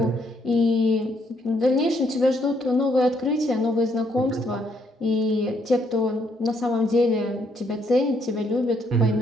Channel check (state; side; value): normal; both; correlation 0.71